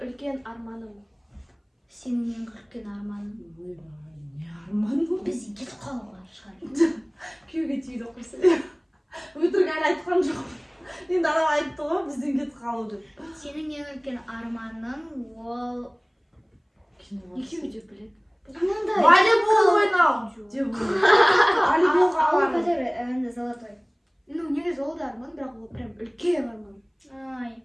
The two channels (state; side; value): identical; both; correlation 1.00